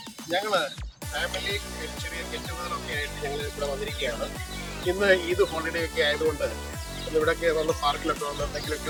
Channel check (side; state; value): both; identical; correlation 1.00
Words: ഞങ്ങള് family ചെറിയ ഗെറ്റുഗതറൊക്കെ ആയിട്ട് ഞങ്ങൾ ഇവിടെ വന്നിരിക്കുകയാണ്. ഇന്ന് ഈദ് ഹോളിഡേ ഒക്കെ ആയതുകൊണ്ട് ഇവിടെയൊക്കെ വന്ന് പാർക്കിലൊക്കെ വന്ന് എന്തെങ്കിലുമൊക്കെ